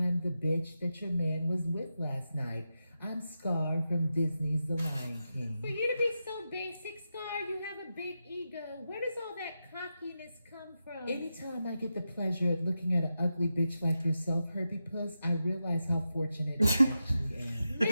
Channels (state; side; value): inverted; both; correlation -0.89